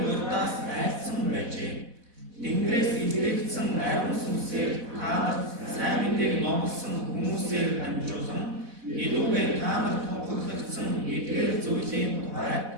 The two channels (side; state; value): left; late; 4.1 ms